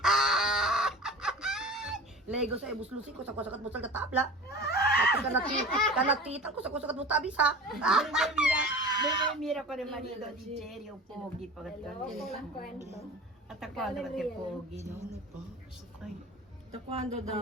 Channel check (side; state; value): both; normal; correlation 0.36